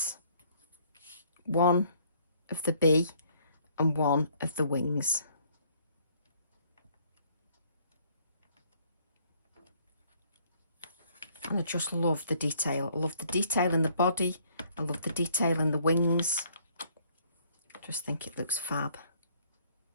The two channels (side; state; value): both; inverted; correlation -0.63